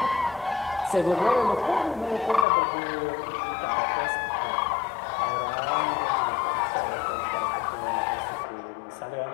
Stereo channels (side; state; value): right; drops out; at 2.5 s